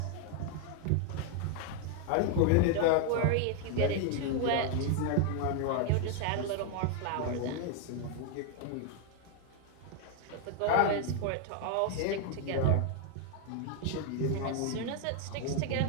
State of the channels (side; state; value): both; different; correlation 0.00